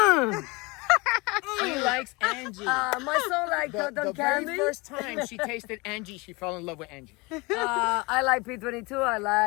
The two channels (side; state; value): right; quieter; 25.7 dB